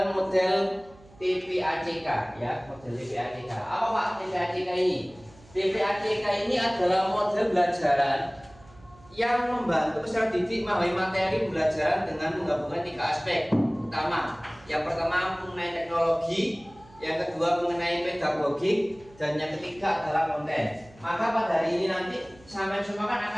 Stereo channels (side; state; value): right; noise; hum, 25 dB below the sound